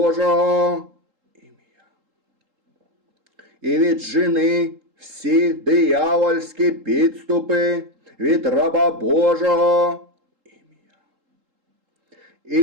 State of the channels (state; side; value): late; left; 3.8 ms